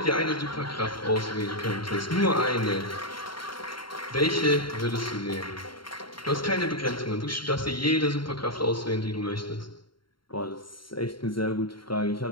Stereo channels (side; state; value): right; late; 0.73 ms